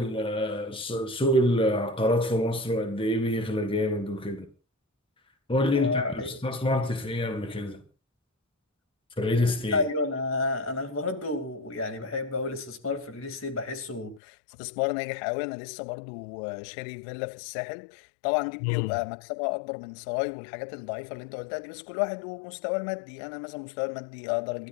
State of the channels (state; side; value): drops out; right; at 14.2 s